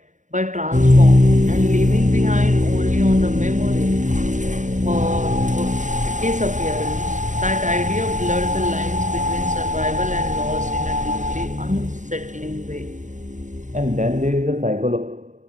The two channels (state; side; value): late; left; 0.36 ms